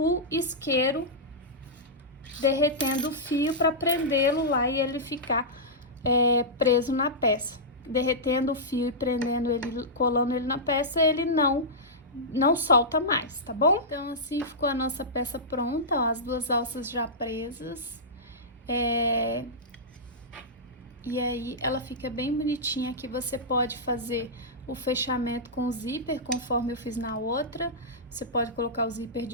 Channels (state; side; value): normal; both; correlation -0.12